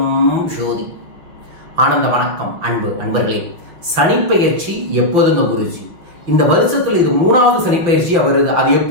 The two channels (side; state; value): left; late; 5.9 ms